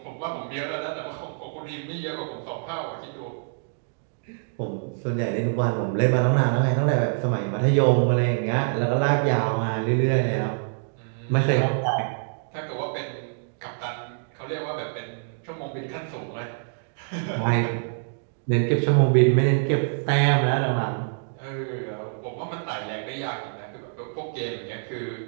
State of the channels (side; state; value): left; silent; digital silence